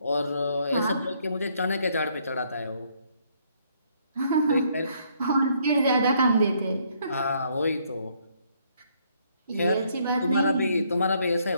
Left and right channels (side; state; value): both; inverted; correlation -0.69